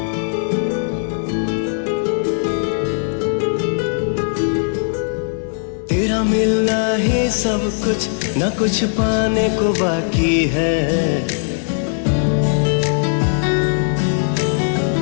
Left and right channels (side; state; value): right; silent; digital silence